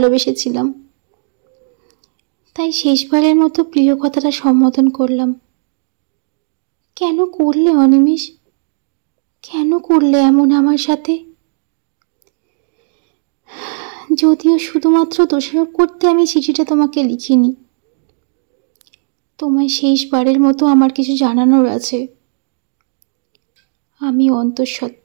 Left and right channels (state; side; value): silent; left; digital silence